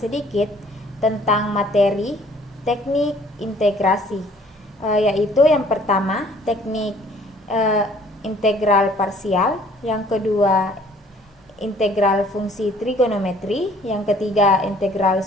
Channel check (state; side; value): normal; both; correlation 0.57